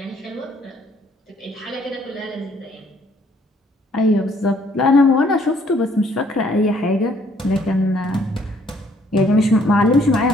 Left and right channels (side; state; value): both; normal; correlation 0.64